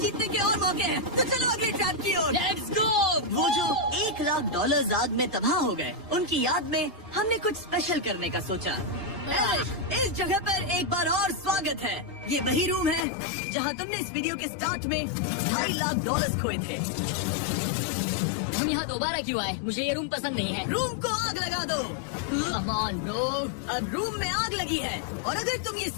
के और मौके हैं। तो चलो अगले ट्रैप की ओर। Let's go! वो जो $1 लाख आग में तबाह हो गए, उनकी याद में हमने कुछ स्पेशल करने का सोचा। इस जगह पर एक बार और स्वागत है। ये वही रूम है जहाँ तुमने इस वीडियो के स्टार्ट में $2.5 लाख खोए थे। हम यहाँ दोबारा क्यों आए? मुझे ये रूम पसंद नहीं है। रूम को आग लगा दो। Come on, bro. अब रूम में आग लगी है और अगर तुम ये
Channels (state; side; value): drops out; right; at 13.1 s